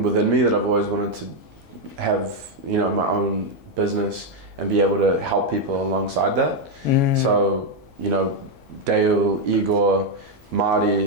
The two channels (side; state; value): left; late; 9.4 ms